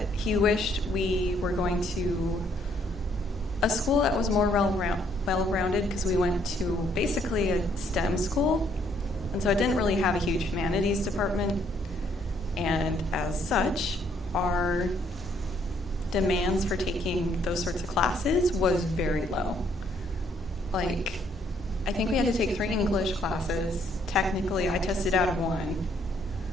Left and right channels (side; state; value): both; normal; correlation 0.68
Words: he wished we were going to a school that was more well-rounded, because we went to basically a STEM school, and so it didn't really have a huge humanities department, and as such, our demands for taking those sorts of classes was very low. Like, I think we had to take 3 English classes. Technically, I tested out of 1.